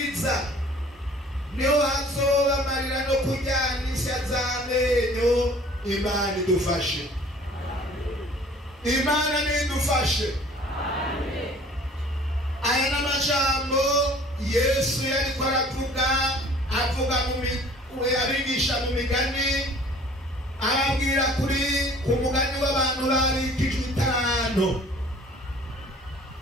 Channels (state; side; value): normal; both; correlation 0.51